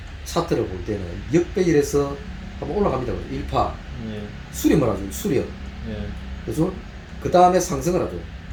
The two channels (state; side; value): identical; both; correlation 1.00